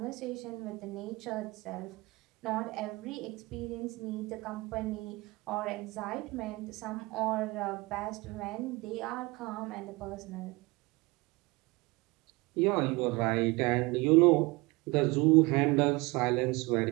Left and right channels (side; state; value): left; quieter; 23.9 dB